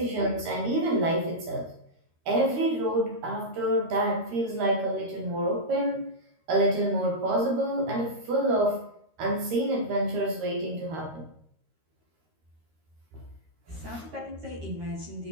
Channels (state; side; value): late; left; 13 ms